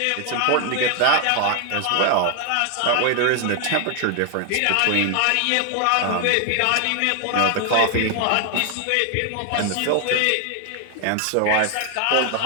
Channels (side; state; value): both; different; correlation 0.00